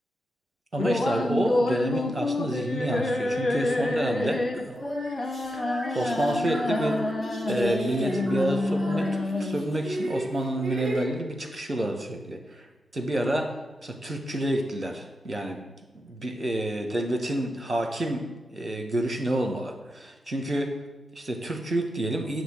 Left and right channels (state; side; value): normal; both; correlation 0.87